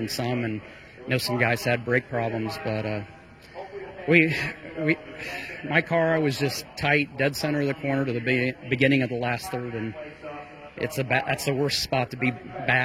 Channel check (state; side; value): identical; both; correlation 1.00